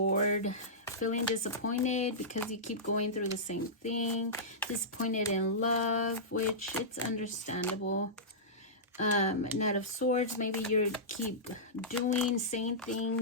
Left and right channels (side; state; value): both; normal; correlation -0.15